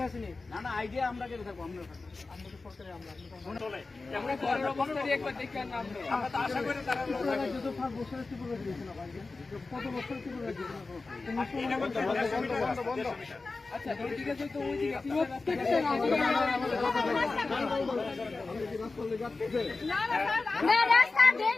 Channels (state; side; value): quieter; right; 3.7 dB